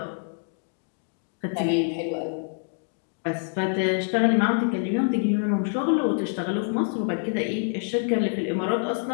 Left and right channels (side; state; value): right; silent; 59 dB below the other